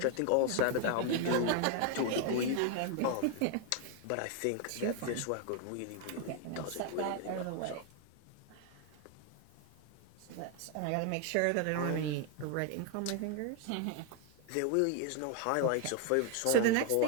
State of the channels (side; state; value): both; different; correlation 0.01